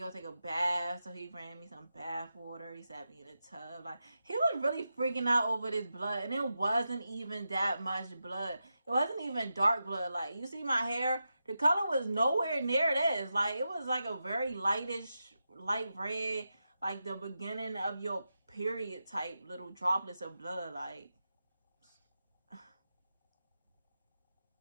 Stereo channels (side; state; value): both; inverted; correlation -0.89